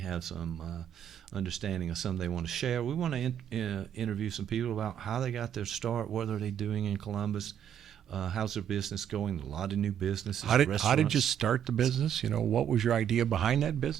some understanding of something they want to share. We want to interview some people about how they got their start, what are they doing in Columbus, how's their business going, a lot of new businesses. How did you start the business? What was your idea behind that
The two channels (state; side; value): quieter; left; 9.4 dB